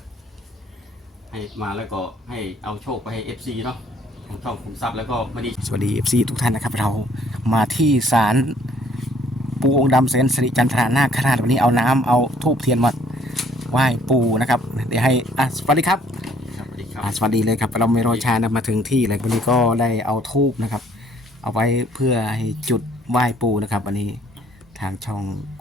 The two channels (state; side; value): normal; both; correlation 0.61